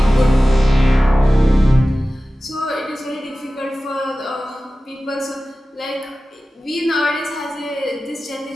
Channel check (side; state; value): both; normal; correlation 0.96